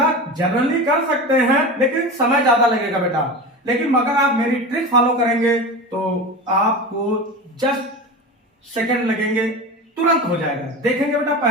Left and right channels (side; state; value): both; normal; correlation 0.28